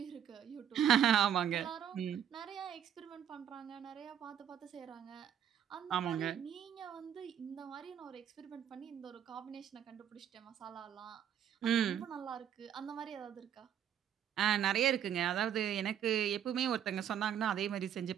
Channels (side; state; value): left; quieter; 9.4 dB